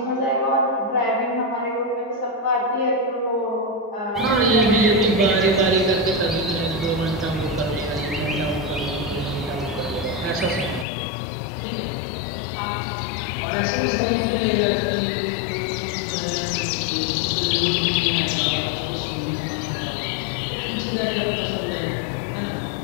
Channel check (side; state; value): right; drops out; at 10.9 s